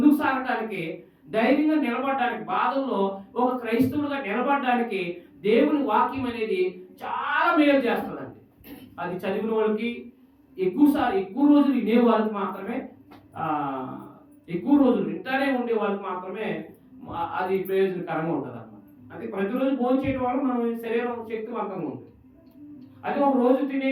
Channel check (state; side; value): identical; both; correlation 1.00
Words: సాగడానికి, ధైర్యంగా నిలబడడానికి, బాధల్లో ఒక క్రైస్తవులుగా నిలబడడానికి దేవుని వాక్యం అనేది చాలా మేలు చేస్తుందండి. అది చదివిన వాళ్ళకి ఎక్కువ రోజులు వినే వాళ్ళకి మాత్రమే, ఎక్కువ రోజులు వింటానే ఉండే వాళ్ళకి మాత్రమే అది ప్రయోజనకరంగా ఉంటుంది అన్నమాట. అది ప్రతిరోజు భోజనం చేయడం వల్ల మనం శరీరం శక్తివంతంగా ఉంటుంది. అది ఒక రోజు